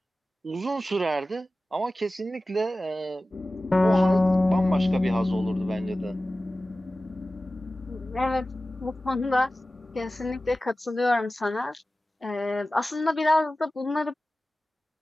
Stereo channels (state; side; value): normal; both; correlation 0.96